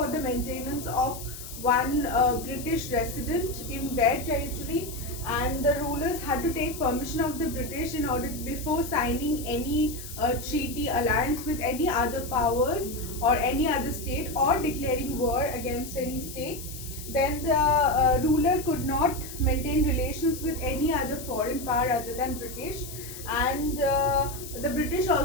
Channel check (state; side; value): noise; left; hiss, 12 dB below the sound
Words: the maintenance of one British resident in their territory, and the rulers had to take permission of the British in order before signing any treaty alliance with any other powers or any other state, or declaring war against any state. Then the ruler could not maintain relations with any other foreign power other than British, and the British